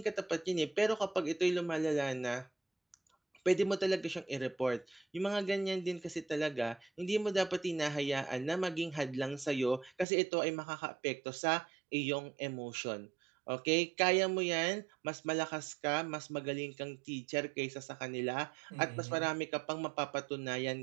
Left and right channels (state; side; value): drops out; left; at 10.1 s